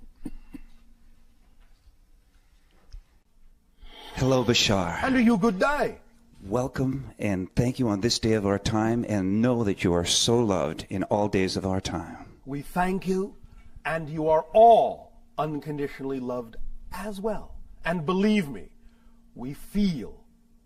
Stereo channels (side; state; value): both; identical; correlation 1.00